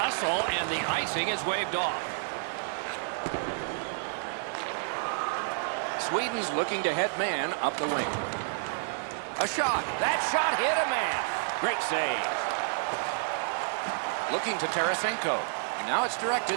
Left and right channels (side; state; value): left; silent; digital silence